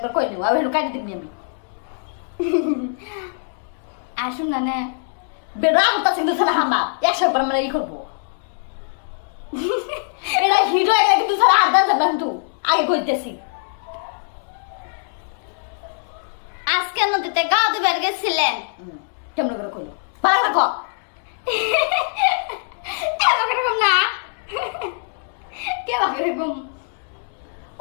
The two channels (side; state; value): right; silent; 64 dB below the other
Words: কই নিও আমি কাটি দিবনি আমি আসুন না নে বেড়া হতা সিন্ধু ছাড়া হামা একশো বার মানে ই করবো এটা হিরো একটা কিন্তু ছাড়া আদান যাবেন কিন্তু আগে কইতেছি আজকে নদীতে গা ধুবার গেছিলেন কেমন করে কইলো ভালো করে কো এরকম না কেমন এরকম